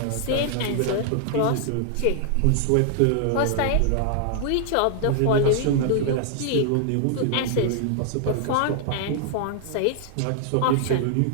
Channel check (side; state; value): both; different; correlation 0.00